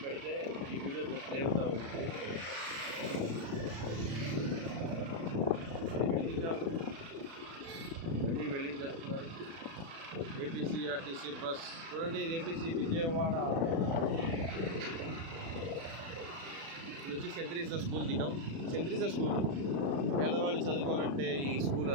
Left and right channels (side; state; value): left; late; 36 ms